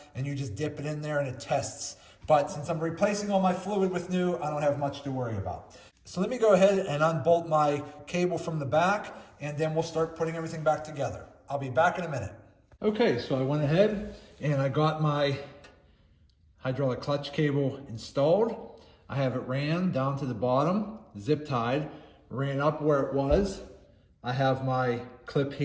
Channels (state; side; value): identical; both; correlation 1.00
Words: and you just dip it in there and it tests. But since I'm replacing all my fluid with new, I don't have much to worry about. So let me go ahead and unbolt my cable from the back, and then we'll start putting everything back together. I'll be back in a minute. Okay, so I went ahead and I got my hydraulic clutch cable installed. I have it ran down to the bottom, zip tied, ran up where it was. I have my clip